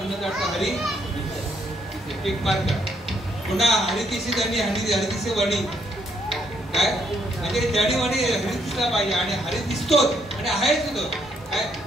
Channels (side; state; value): both; normal; correlation 0.72